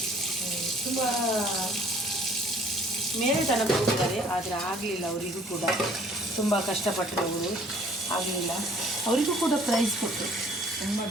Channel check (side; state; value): both; normal; correlation 0.56